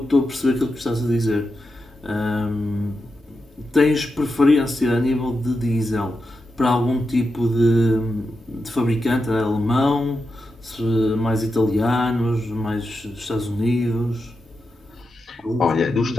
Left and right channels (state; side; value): normal; both; correlation 0.88